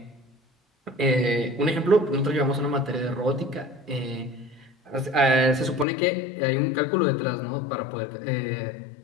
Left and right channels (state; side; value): drops out; right; at 5.9 s